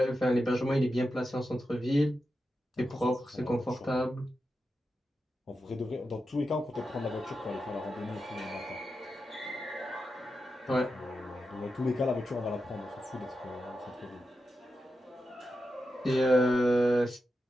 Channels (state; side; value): normal; both; correlation 0.89